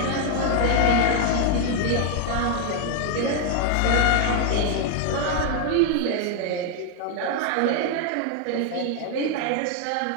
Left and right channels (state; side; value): different; both; correlation 0.00